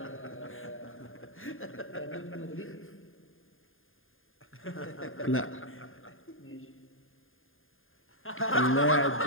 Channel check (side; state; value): right; late; 0.59 ms